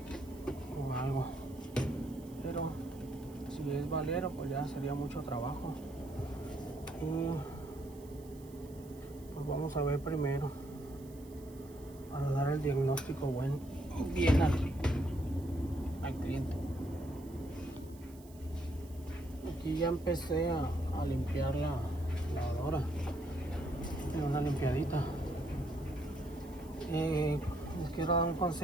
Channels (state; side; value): noise; right; hiss, 24 dB below the sound